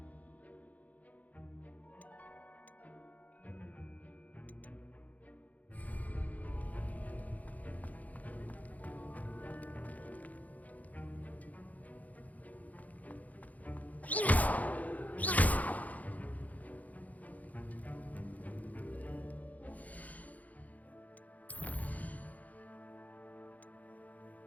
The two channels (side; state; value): right; late; 0.076 ms